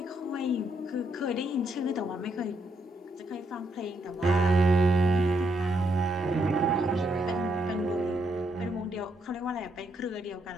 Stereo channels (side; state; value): both; normal; correlation 0.77